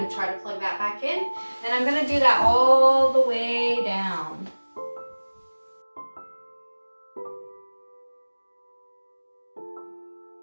try to plug that back in. And I'm gonna do that all the way down.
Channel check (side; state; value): both; inverted; correlation -1.00